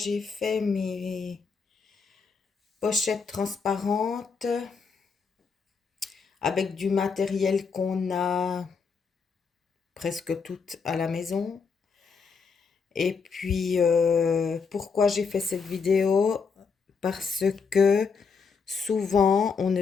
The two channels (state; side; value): quieter; right; 5.3 dB